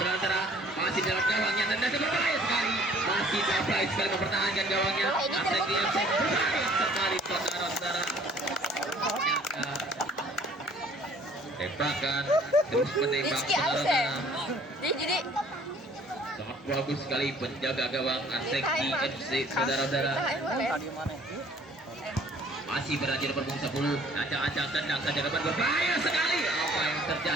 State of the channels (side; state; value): both; normal; correlation 0.55